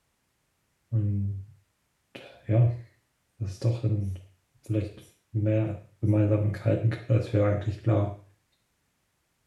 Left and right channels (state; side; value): identical; both; correlation 1.00